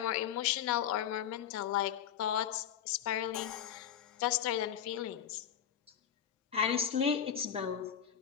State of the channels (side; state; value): right; quieter; 9.2 dB